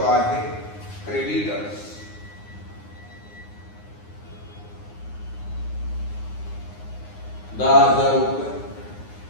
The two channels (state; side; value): late; right; 9.7 ms